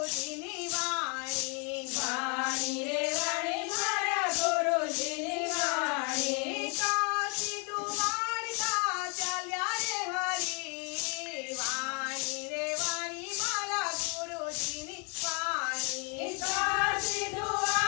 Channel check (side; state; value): right; quieter; 36.0 dB